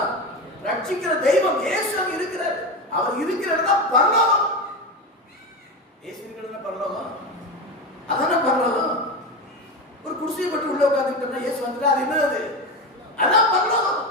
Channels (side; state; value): both; normal; correlation 0.20